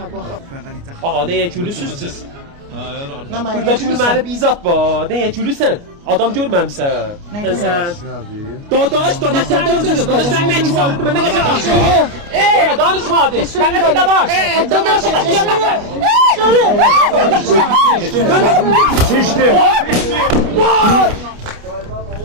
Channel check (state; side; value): late; left; 29 ms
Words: baxaq. Ağa nəyə gülüsüz siz? Nə mənə Burada gülməli bir izat var. Nəyə gülüsən? Adam görməmsən. Sən. Dadaş sən danışma. Sən nə kitabı mən nə qədər danışıram? Danışma hadi. Mən nə dadaş? Dadaş. Seçdi.